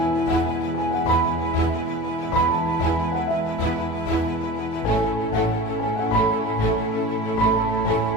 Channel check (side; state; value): right; late; 36 ms